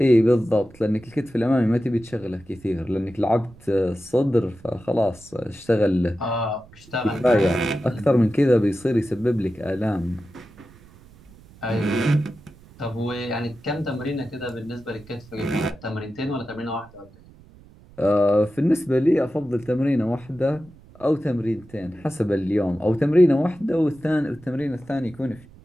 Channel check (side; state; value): right; noise; rumble, 24 dB below the sound